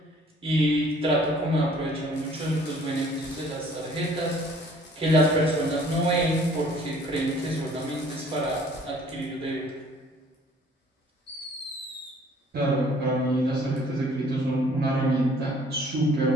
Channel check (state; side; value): normal; both; correlation 0.56